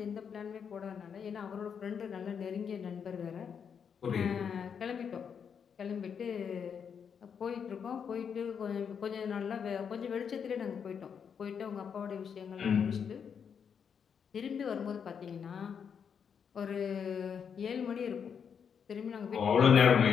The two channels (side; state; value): right; quieter; 7.1 dB